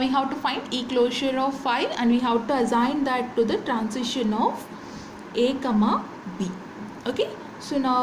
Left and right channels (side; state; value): both; identical; correlation 1.00